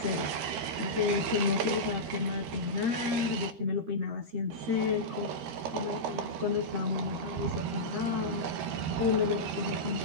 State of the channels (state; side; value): late; left; 13 ms